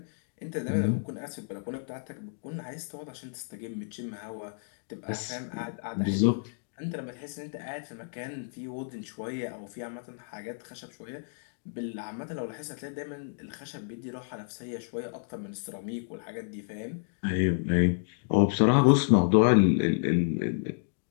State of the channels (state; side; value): silent; right; digital silence